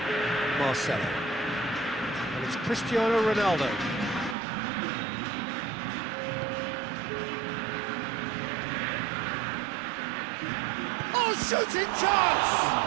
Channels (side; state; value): left; drops out; at 4.4 s